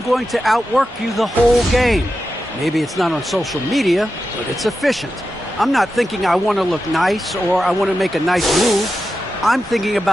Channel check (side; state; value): both; normal; correlation 0.90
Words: going to outwork you the whole game. Maybe it's not on social media, but it's efficient. I'm not thinking I want to look nice or I want to make a nice move. I'm thinking